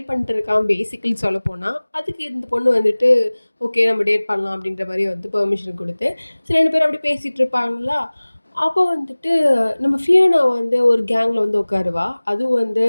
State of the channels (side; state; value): both; inverted; correlation -1.00